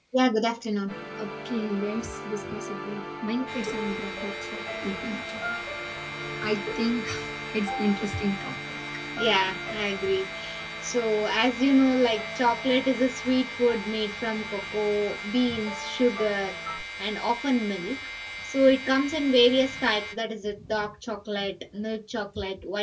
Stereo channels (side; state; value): both; identical; correlation 1.00